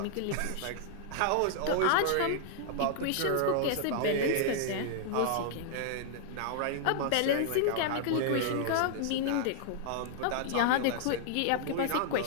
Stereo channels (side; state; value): both; different; correlation -0.01